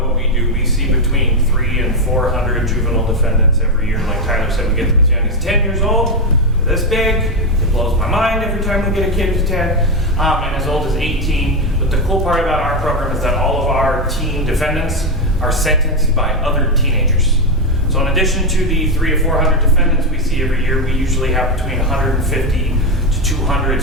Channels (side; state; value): both; normal; correlation 0.08